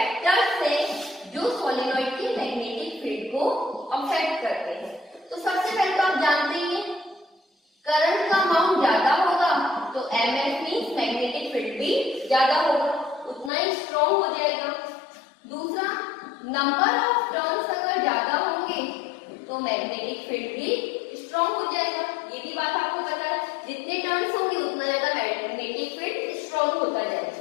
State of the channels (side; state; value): right; drops out; at 13.5 s